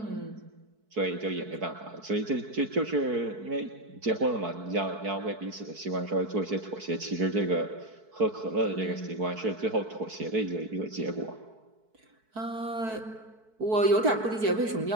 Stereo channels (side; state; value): left; late; 4.6 ms